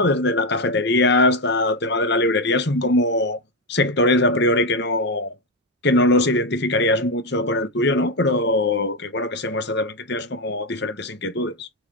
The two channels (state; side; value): normal; both; correlation 0.07